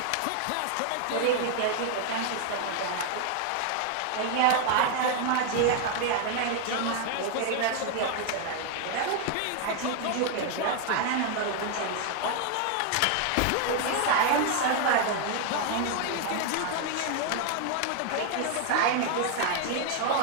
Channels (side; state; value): both; different; correlation 0.00